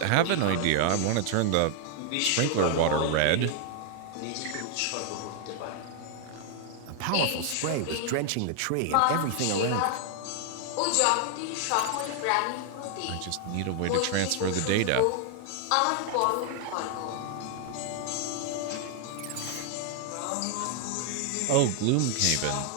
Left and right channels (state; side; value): different; both; correlation 0.00